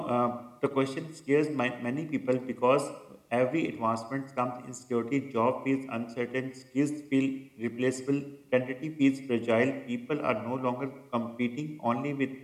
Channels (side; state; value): both; identical; correlation 1.00